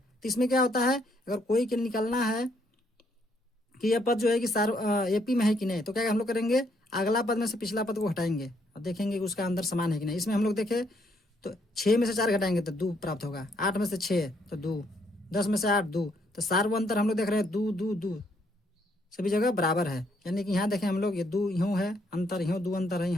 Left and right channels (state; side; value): normal; both; correlation 0.71